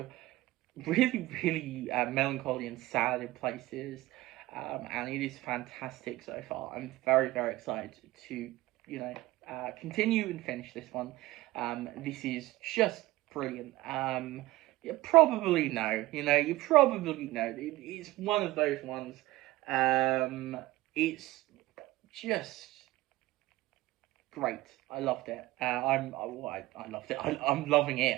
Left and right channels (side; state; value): left; quieter; 18.5 dB